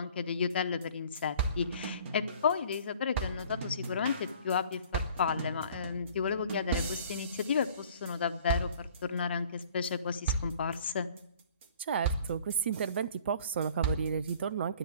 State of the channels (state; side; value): inverted; both; correlation -0.52